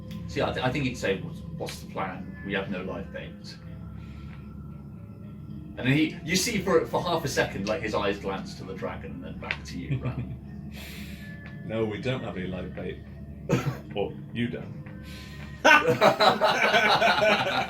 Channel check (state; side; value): identical; both; correlation 1.00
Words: See, I think he'd say, "What's the plan? We have no live bait." And then you see for half a second, like, his eyes glance to the dragon and then back to you, Ram. No, we don't have any live bait. Well, you don't.